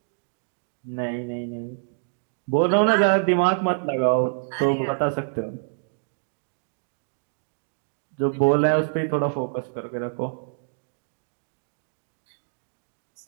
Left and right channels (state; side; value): silent; left; digital silence